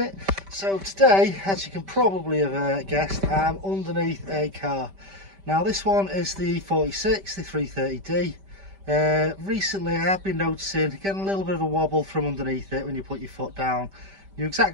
So today, as you can probably have guessed, I'm underneath a car. Now this one is the E46, the 330D. Recently I have been noticing getting a little bit of a wobble from underneath it when you put your foot down. You know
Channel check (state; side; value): late; left; 5.1 ms